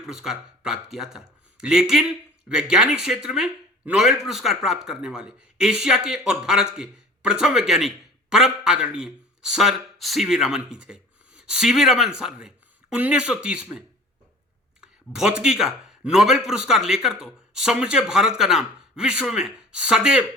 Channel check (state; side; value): normal; both; correlation 0.43